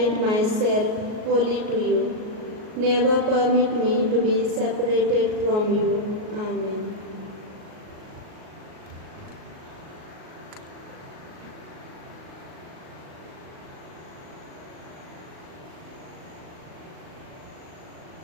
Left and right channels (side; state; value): left; late; 38 ms